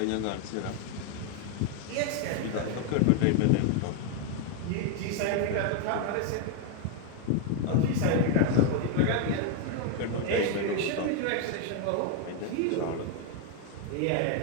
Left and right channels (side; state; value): both; different; correlation 0.00